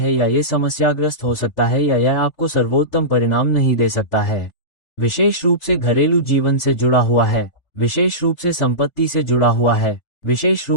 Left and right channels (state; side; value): late; right; 3.4 ms